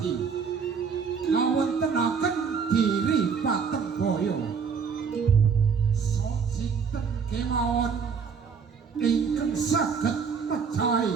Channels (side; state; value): left; quieter; 6.0 dB